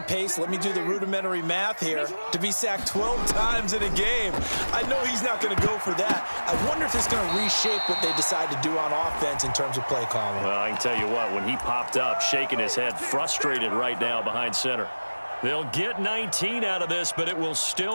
pace. Let me do the rudimentary math here. To be sacked 12 times in a game. I know he's not going to go for that. I wonder if it's going to reshape what they decide to do on offense in terms of play calling. Well, I can tell you what, when he popped up, shaking his head, frustrated right now behind center. They'll get 19 out of this, but it will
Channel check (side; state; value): both; inverted; correlation -1.00